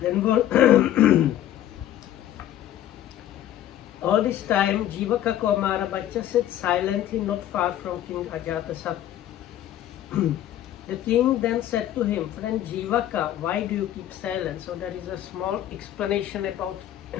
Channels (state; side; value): quieter; right; 12.2 dB